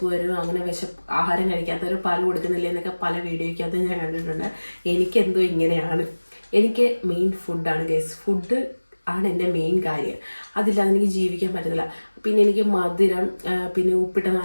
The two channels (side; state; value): both; inverted; correlation -1.00